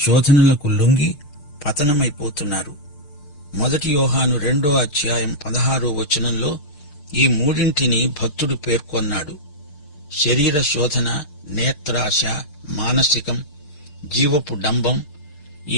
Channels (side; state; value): right; late; 6.7 ms